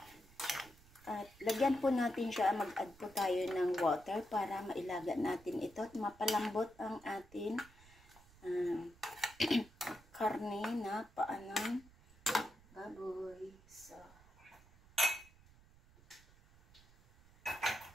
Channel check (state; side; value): noise; right; rumble, 25 dB below the sound